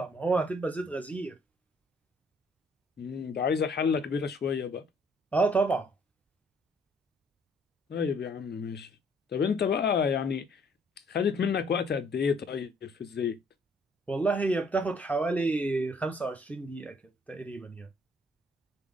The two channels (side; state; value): both; normal; correlation 0.62